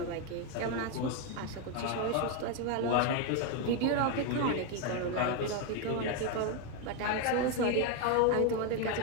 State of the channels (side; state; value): both; different; correlation 0.02